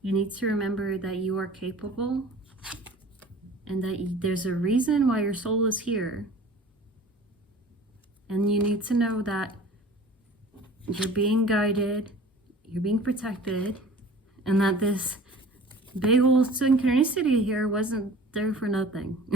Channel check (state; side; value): normal; both; correlation 0.44